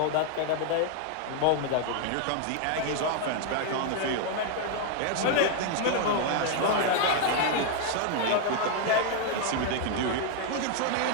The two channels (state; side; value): different; both; correlation 0.00